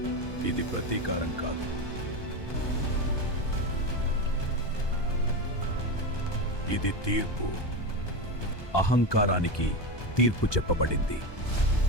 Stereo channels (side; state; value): right; late; 1.2 ms